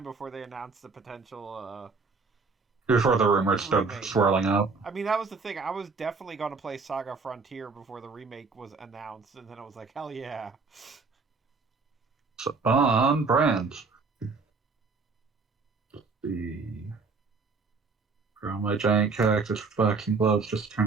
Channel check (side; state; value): left; quieter; 4.4 dB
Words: before they announced the potential... Before the rumors started swirling up. I mean, that was the thing. I was definitely going to play Saga Frontier before the remake was announced, and then I was like, hell yeah. So, on brand. The grow my giant cactus with boxing gloves just